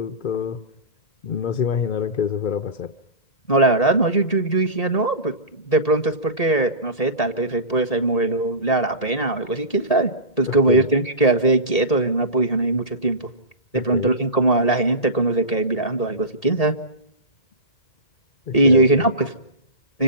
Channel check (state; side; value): late; right; 1.8 ms